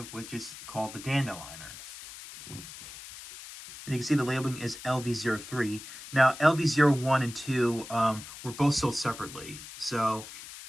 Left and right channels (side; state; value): left; noise; hiss, 13 dB below the sound